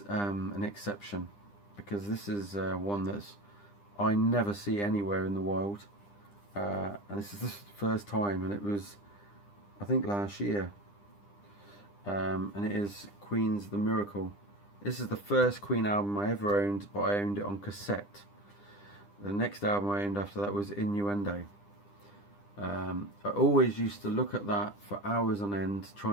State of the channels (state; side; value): late; right; 9.9 ms